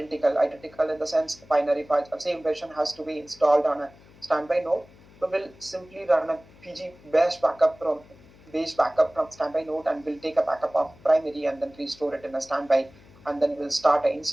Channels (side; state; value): left; noise; hum, 25 dB below the sound